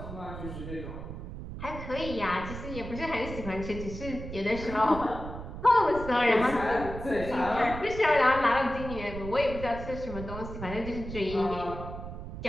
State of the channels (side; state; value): right; noise; rumble, 9 dB below the sound